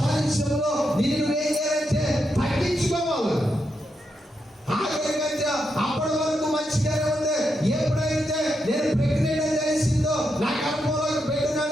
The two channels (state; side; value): normal; both; correlation 0.83